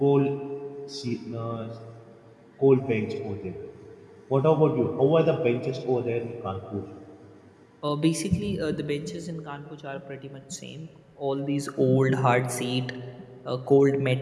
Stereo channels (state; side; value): identical; both; correlation 1.00